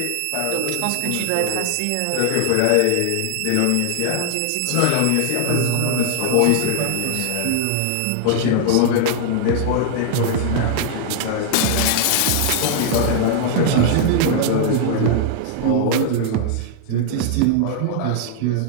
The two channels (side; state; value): both; different; correlation 0.00